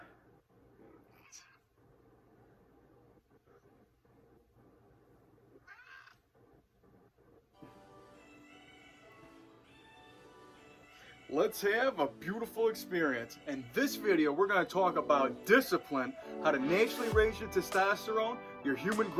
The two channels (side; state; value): both; identical; correlation 1.00